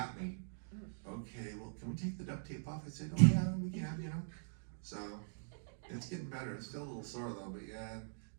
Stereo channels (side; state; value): left; silent; digital silence